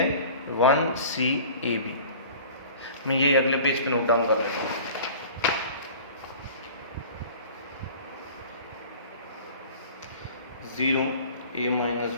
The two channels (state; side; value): inverted; both; correlation -0.43